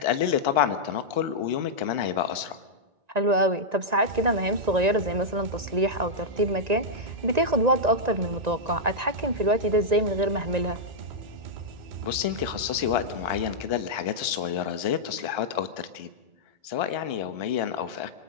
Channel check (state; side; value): late; left; 1.9 ms